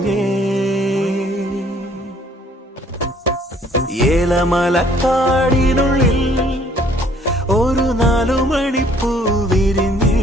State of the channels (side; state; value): both; normal; correlation 0.60